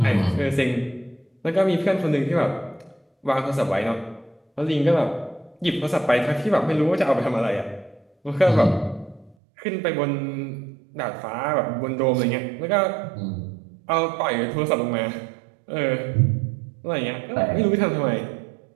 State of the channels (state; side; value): drops out; left; at 9.3 s